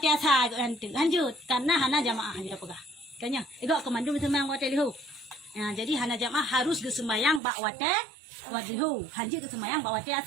asar hanjut karena hana jamaah hanjut pegah. Kanya, igak kemandu semang wate lihu. Ya, jadi hana jamaah harus ke sembahyang bak wate wadihu. Hanji ke sembahyang bak wate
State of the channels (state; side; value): drops out; left; at 7.4 s